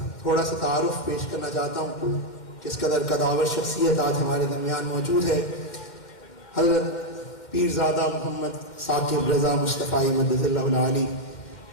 تھوڑا سا تعارف پیش کرنا چاہتا ہوں، کس قدر قداور شخصیت آج ہمارے درمیان موجود ہے۔ حضرت پیرزادہ محمد ثاقب رضا مصطفی مدد اللہ العالی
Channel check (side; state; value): right; late; 2.1 ms